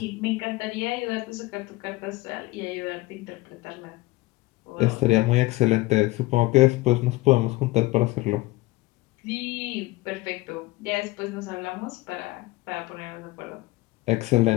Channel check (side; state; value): right; quieter; 20.4 dB